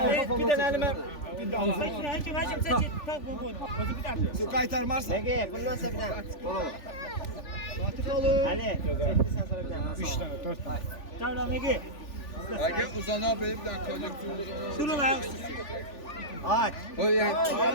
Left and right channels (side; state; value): right; late; 3.4 ms